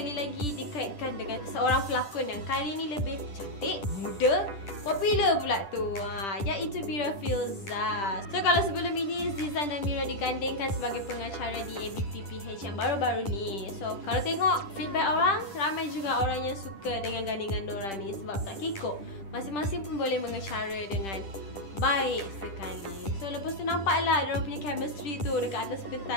lagi dikaitkan dengan seorang pelakon yang kali ini lebih cantik, muda, popular pula tu, iaitu Mira Filzah. So kalau sebelum ini Zizan dan Mira digandingkan sebagai pengacara di ABPPH yang baru-baru ni. So kalau tengok feedback orang, ramai juga orang yang suka dengan gandingan diorang ni sebab tak kikuk. Masing-masing pun boleh mengacara dengan baik sekali. So lepas tu nampaklah diorang punya chemistry tu dekat atas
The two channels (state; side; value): late; right; 10 ms